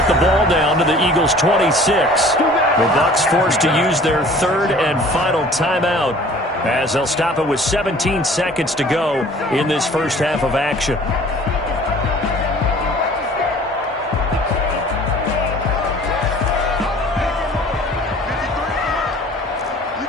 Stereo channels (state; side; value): normal; both; correlation 0.49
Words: the ball down to the Eagles' 26. The Bucs forced to use their third and final timeout as they'll stop it with 17 seconds to go in this first half of action.